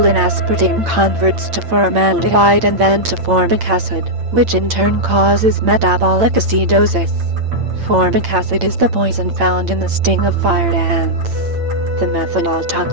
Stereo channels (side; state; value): left; late; 8.8 ms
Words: in aspartame converts to formaldehyde and then to formic acid, which in turn causes metabolic acidosis. Formic acid is the poison found in the sting of fire ants. The methanol